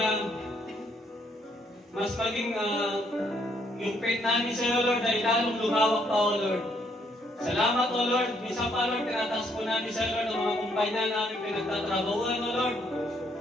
mas maging yung faith namin sa iyo, Lord, ay lalong lumawak pa, O Lord. Salamat, O Lord. Minsan pa, Lord, tinataas po namin sa iyo, Lord, ang mga kumpanya namin pinagtatrabahuan, O Lord.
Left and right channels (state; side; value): normal; both; correlation 0.70